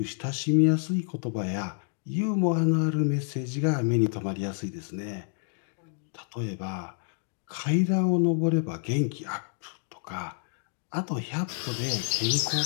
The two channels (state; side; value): silent; right; 57 dB below the other